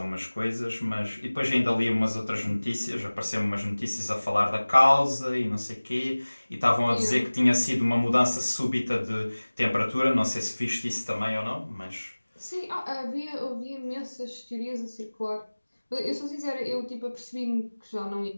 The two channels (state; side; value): inverted; both; correlation -1.00